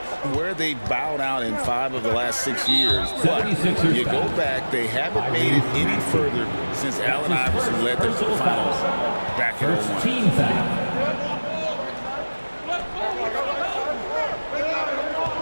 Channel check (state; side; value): inverted; both; correlation -1.00